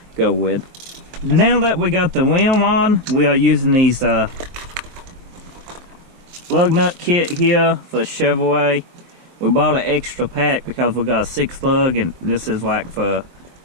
go with. Now that we got the rim on, we are using these lug nut kit here for Chevrolet. We bought an extra pack because we got a 6 lug, and this is like for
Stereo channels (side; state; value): left; late; 23 ms